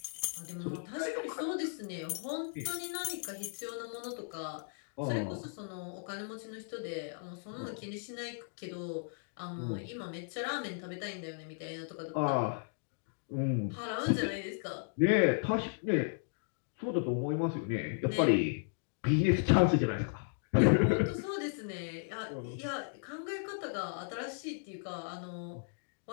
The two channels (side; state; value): right; silent; digital silence